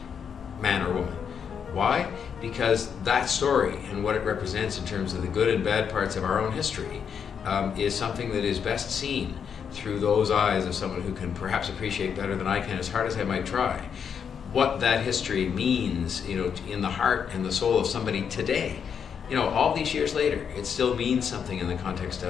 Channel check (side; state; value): right; quieter; 7.2 dB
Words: man or woman. Why? Because that story and what it represents in terms of the good and bad parts of our own history is something that is best seen through those eyes of someone who can perhaps appreciate better than I can, as hard as I might try, what that history means, in the heart and the soul of somebody today. All these years later, it still means something in the context